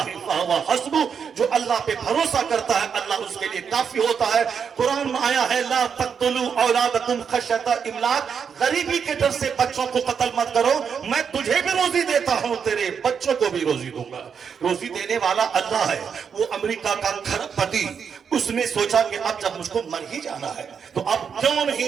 فَهُوَ حَسْبُهُ، جو اللہ پہ بھروسہ کرتا ہے اللہ اس کے لیے کافی ہوتا ہے. قرآن میں آیا ہے لا تقتلوا اولادکم خشیۃ املاق، غریبی کے ڈر سے بچوں کو قتل مت کرو، میں تجھے بھی روزی دیتا ہوں، تیرے بچوں کو بھی روزی دوں گا. روزی دینے والا اللہ ہے. وہ امریکہ کا کھرب پتی، اس نے سوچا کہ اب جب مجھ کو مر ہی جانا ہے تو اب کیوں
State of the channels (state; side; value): quieter; left; 6.8 dB